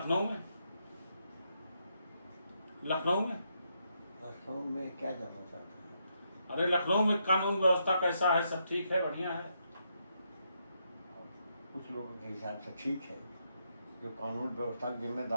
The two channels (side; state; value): both; inverted; correlation -0.79